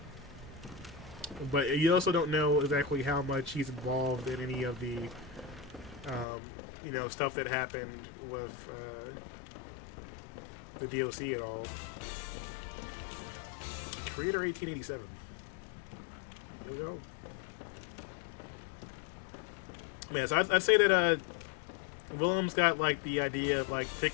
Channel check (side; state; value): right; drops out; at 6.2 s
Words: But you also don't know exactly how much he's involved in any of the, you know, stuff that happened with the DOC at all. Creator 1887. There we go. Yeah, so I'd say that Willem's got like the idea of like